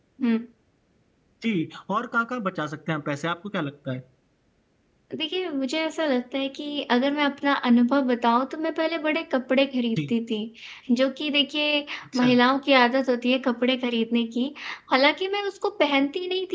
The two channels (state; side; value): identical; both; correlation 1.00